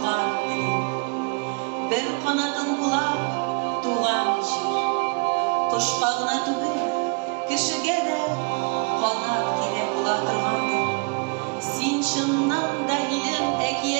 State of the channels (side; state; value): left; quieter; 33.6 dB